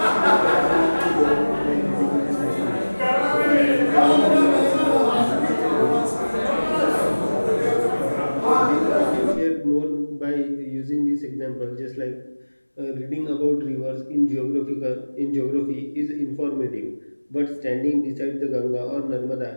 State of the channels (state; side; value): inverted; both; correlation -1.00